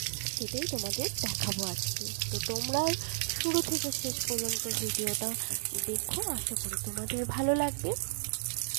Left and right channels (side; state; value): left; silent; digital silence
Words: সেটাই তোমাদের দেখাবো আজকে। তো তোমরা শুরু থেকে শেষ পর্যন্ত ভিডিওটা দেখো, আশা করি তোমাদের ভালো লাগবে।